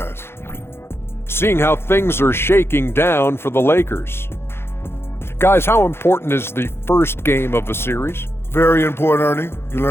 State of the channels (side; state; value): right; late; 0.12 ms